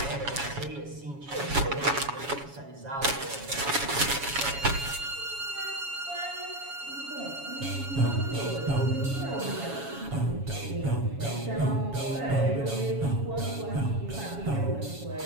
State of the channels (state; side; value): late; left; 7.2 ms